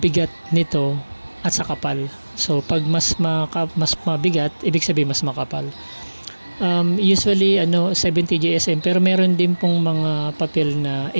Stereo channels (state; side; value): inverted; both; correlation -1.00